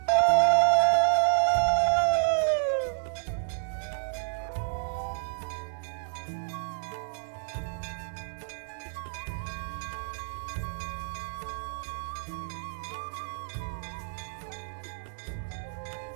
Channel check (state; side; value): silent; left; digital silence